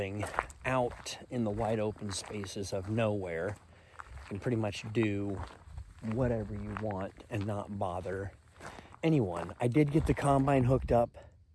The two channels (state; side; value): identical; both; correlation 1.00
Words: out in the wide open spaces of nowhere. You can pretty much do whatever you want and not bother anyone. I did get the combine hooked up